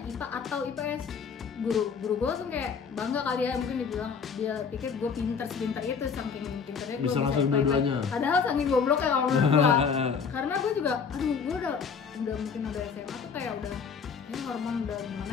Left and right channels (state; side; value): quieter; right; 6.0 dB